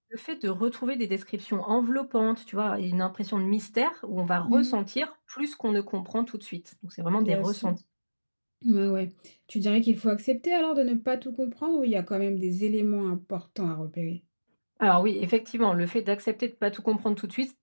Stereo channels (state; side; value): inverted; both; correlation -1.00